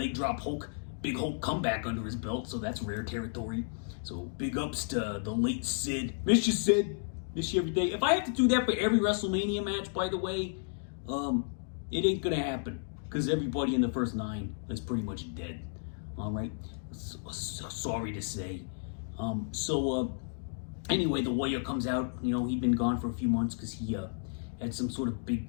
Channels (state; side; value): silent; right; digital silence